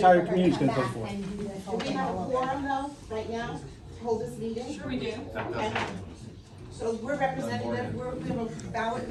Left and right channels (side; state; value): both; identical; correlation 1.00